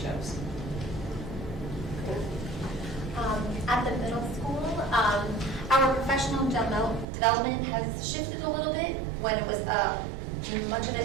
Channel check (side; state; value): left; drops out; at 7.1 s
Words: At the middle school, our professional development has shifted a little bit. When it was, much of